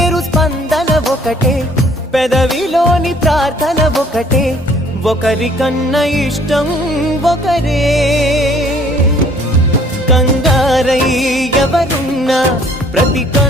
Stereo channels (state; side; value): normal; both; correlation 0.58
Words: స్పందన ఒకటే పెదవిలోని ప్రార్థన ఒకటే ఒకరికన్నా ఇష్టం ఒకరే కంగారై ఎవరున్నా ప్రతి